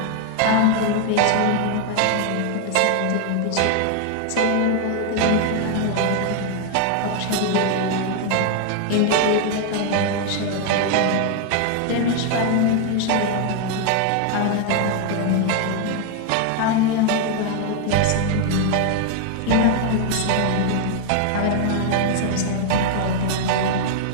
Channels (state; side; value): different; both; correlation 0.00